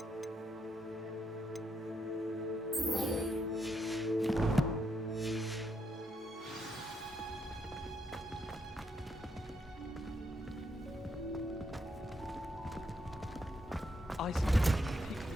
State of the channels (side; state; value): both; normal; correlation 0.78